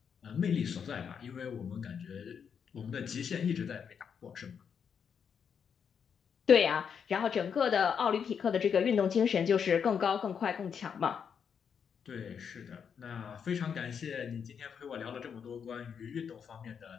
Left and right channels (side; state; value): right; quieter; 7.1 dB